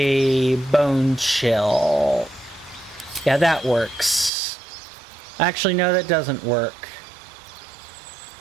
Bone Chill. Yeah, that works. Actually, no, that doesn't work.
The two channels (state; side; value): drops out; left; at 4.3 s